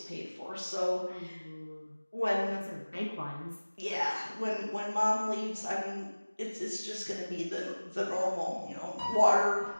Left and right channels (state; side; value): inverted; both; correlation -1.00